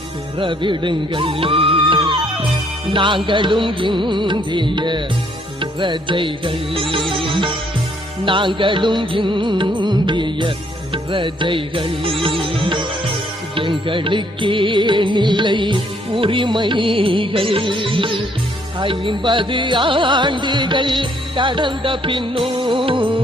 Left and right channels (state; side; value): normal; both; correlation 0.67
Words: பெறவிடுங்கள். நாங்களும் இந்திய பிரஜைகள், நாங்களும் இந்திய பிரஜைகள். எங்களுக்கே நிலை உரிமைகள் 50 ஆண்டுகள் கடந்த பின்னும்